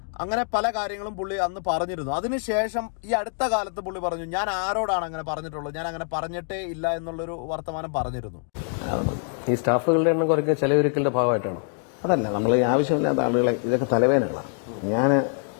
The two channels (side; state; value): right; silent; 55 dB below the other